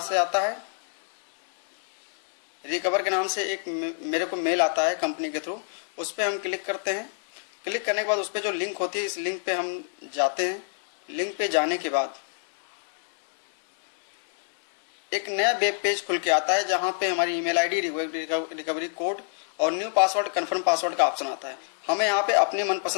से आता है। रिकवर के नाम से एक मेरे को मेल आता है कंपनी के थ्रू, उस पर हम क्लिक करते हैं। क्लिक करने के बाद उस पर जो लिंक होती है, इस लिंक पे हम जाते हैं। लिंक पे जाने के बाद एक नया वेब पेज खुल के आता है, जहां पे हमारी ईमेल आईडी, रिकवरी कोड और न्यू पासवर्ड, कन्फर्म पासवर्ड का ऑप्शन आता है। हमें यहाँ पे अपने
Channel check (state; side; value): silent; right; 61 dB below the other